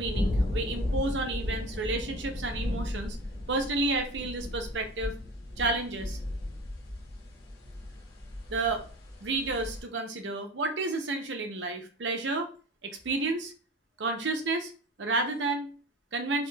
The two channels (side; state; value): both; normal; correlation 0.35